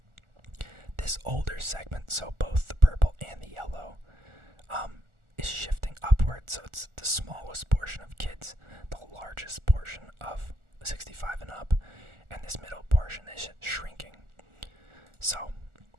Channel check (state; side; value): late; left; 1.4 ms